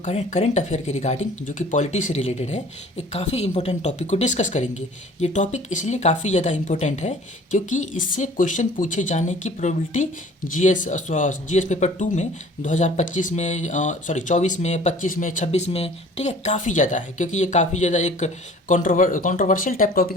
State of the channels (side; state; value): both; normal; correlation 0.49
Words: करंट अफेयर के रिगार्डिंग जो कि पॉलिटी से रिलेटेड है, एक काफ़ी इंपॉर्टेंट टॉपिक को डिस्कस करेंगे। ये टॉपिक इसलिए काफ़ी ज़्यादा इंपॉर्टेंट है क्योंकि इससे क्वेश्चन पूछे जाने की प्रोबेबिलिटी जीएस पेपर 2 में 2025 में 24 में 25 में 26 में, ठीक है, काफ़ी ज़्यादा है। क्योंकि ये काफ़ी ज़्यादा एक कंट्रोवर्शियल टाइप